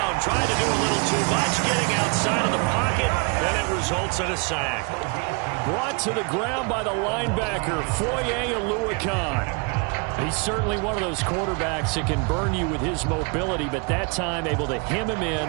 trying to do a little too much, getting outside of the pocket, and it results in a sack. Brought to the ground by the linebacker, Foye Oluwakan. He's certainly one of those quarterbacks that can burn you with his mobility, but that time able to hem him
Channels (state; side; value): quieter; left; 31.9 dB